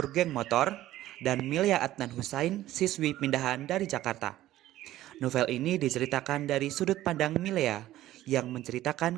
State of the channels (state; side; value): quieter; left; 14.6 dB